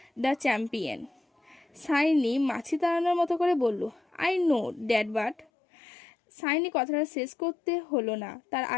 the champion. Saini মাছি তাড়ানোর মতো করে বলল, I know that, but. Saini কথাটা শেষ করতে হলো না, তার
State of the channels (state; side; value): drops out; right; at 5.5 s